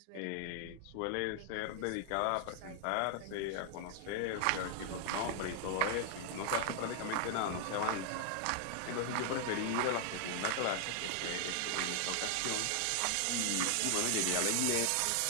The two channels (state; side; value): different; both; correlation 0.00